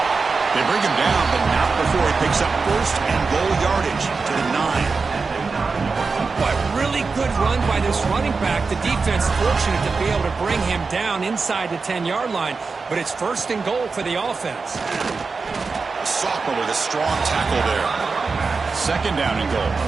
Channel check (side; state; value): left; quieter; 4.5 dB